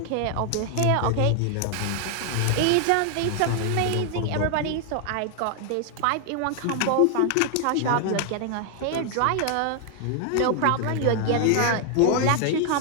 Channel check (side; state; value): both; different; correlation 0.00